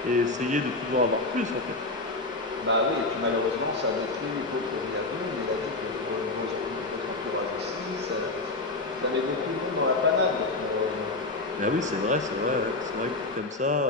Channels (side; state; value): right; quieter; 3.2 dB